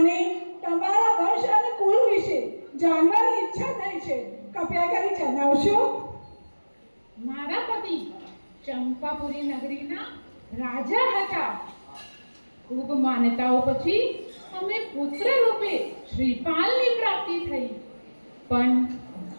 તમારા વંશ અને કુળ વિશે જાણવાની ઈચ્છા થઈ છે. કૃપયા કરી જણાવશો? મારા પતિ ચંપાપુરી નગરીના રાજા હતા. ખૂબ માન્યતાઓ પછી અમે પુત્ર રૂપે શ્રીપાલની પ્રાપ્તિ થઈ. પણ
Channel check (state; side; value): inverted; both; correlation -1.00